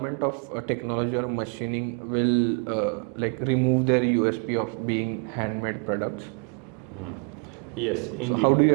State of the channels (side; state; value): left; quieter; 35.2 dB